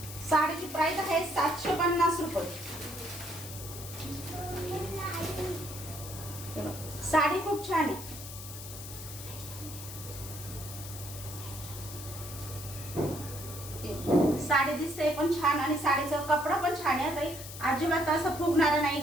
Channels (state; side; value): noise; left; hiss, 12 dB below the sound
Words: साडीची प्राइस आहे 750 रुपये. साडी खूप छान आहे. साडी दिसते पण छान आणि साडीचा कपडा पण छान आहे ताई. अजिबात असं फुगणारा नाही